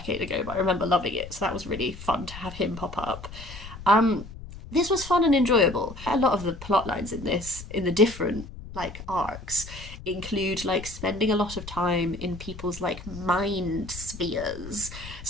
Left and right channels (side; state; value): left; noise; rumble, 13 dB below the sound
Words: ago, but I remember loving it. So that was really fun to have him pop up. Um, this was fun and enjoyable. A lot of the plot lines in this, in the different like arcs, include like spending a lot of time in people's like mind spheres.